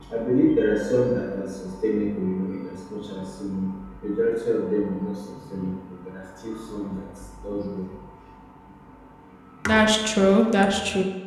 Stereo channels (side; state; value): both; identical; correlation 1.00